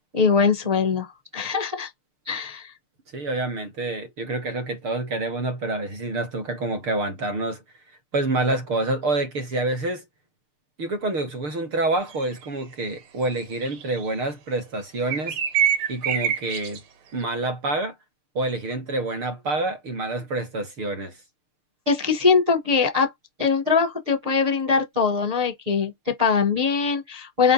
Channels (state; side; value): late; left; 6.6 ms